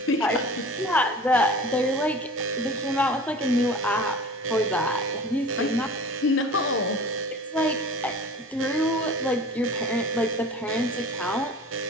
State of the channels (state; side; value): normal; both; correlation 0.40